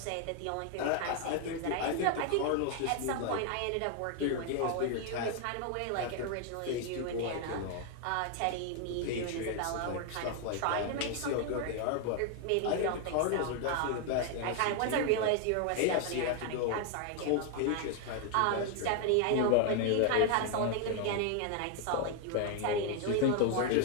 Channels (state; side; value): different; both; correlation 0.00